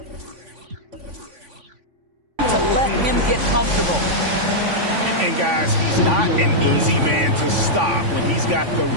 to let him get comfortable. And guys, he's not an easy man to stop when he's got the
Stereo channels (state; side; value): late; left; 3.5 ms